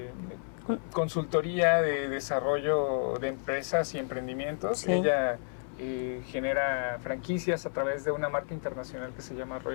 consultoría de desarrollo de empresas y emprendimientos. Sí. Ella genera franquicias a través de una marca internacional que se llama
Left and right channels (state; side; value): silent; right; 57 dB below the other